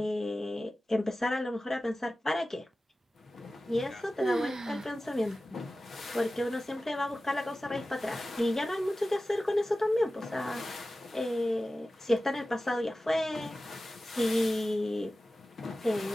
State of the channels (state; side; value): normal; both; correlation 0.96